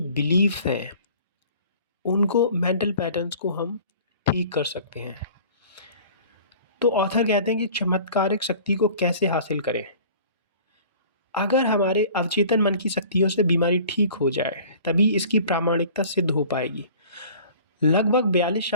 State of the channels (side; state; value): both; inverted; correlation -0.47